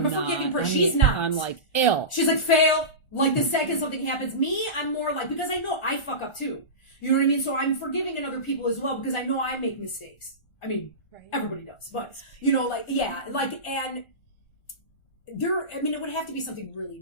a forgiving person. She's not. I'm like, ill. She's like, fail. Like, the second something happens. Me, I'm more like, because I know I fuck up too. You know what I mean? So I'm forgiving in other people as well because I know I make mistakes. I mean, everybody does. But, and there, I mean, it would have to be something really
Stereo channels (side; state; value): right; late; 1.4 ms